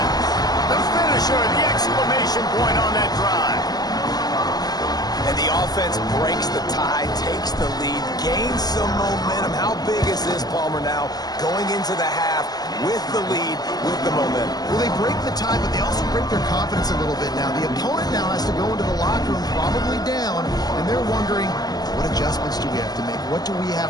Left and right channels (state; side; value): late; right; 0.19 ms